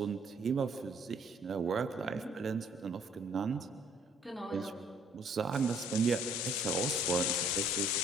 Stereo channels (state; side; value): normal; both; correlation 0.61